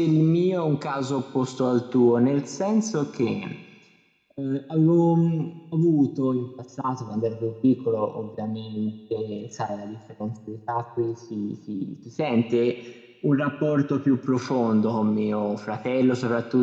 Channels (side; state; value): both; identical; correlation 1.00